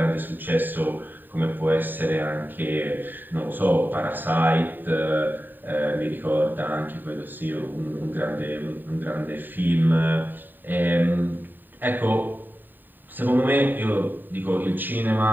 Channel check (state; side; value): late; left; 0.091 ms